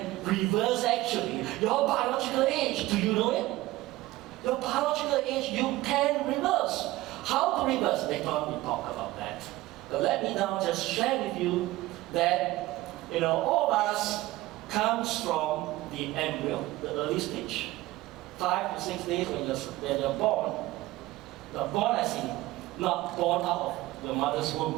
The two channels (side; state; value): left; quieter; 17.9 dB